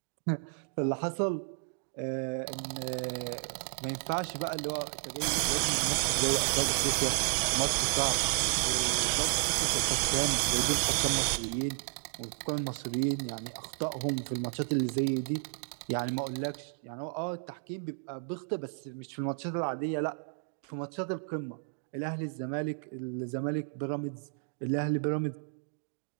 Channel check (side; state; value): left; silent; digital silence